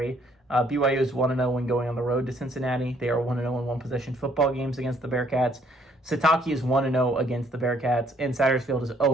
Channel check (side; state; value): both; normal; correlation 0.64